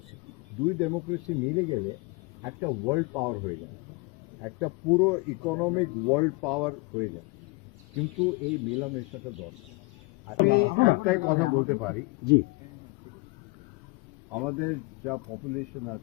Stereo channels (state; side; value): quieter; right; 26.5 dB